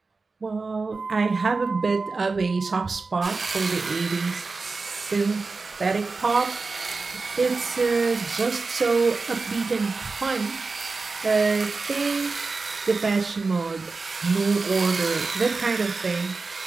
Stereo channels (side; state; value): left; quieter; 4.1 dB